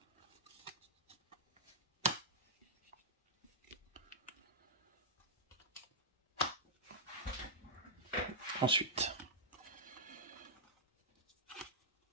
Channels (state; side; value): normal; both; correlation -0.08